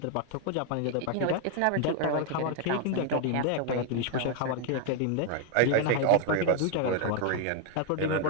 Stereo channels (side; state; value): both; different; correlation 0.00